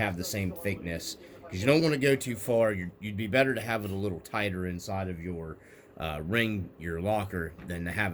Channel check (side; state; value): both; identical; correlation 1.00